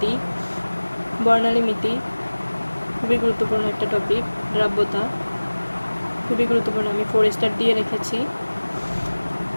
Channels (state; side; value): inverted; both; correlation -1.00